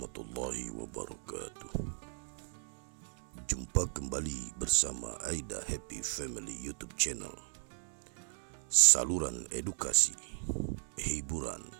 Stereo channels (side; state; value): left; silent; digital silence